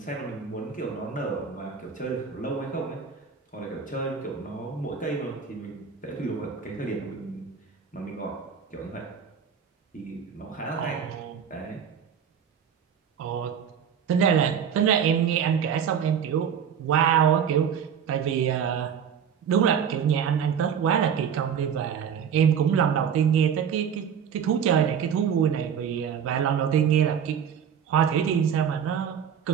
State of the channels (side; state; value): left; quieter; 7.7 dB